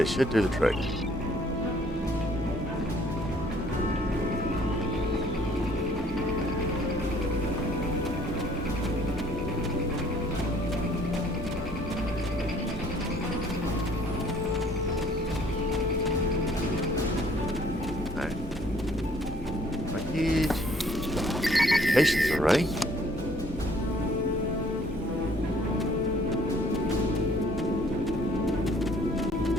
should do the trick. communications array.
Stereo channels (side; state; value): both; normal; correlation 0.60